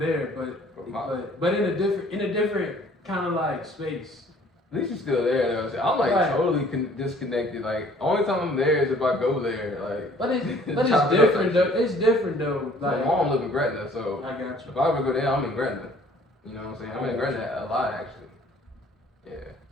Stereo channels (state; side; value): normal; both; correlation 0.56